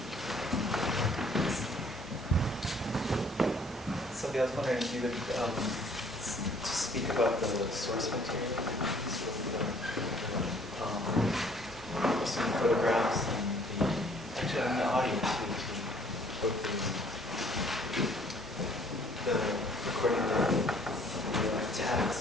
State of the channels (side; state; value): both; normal; correlation 0.58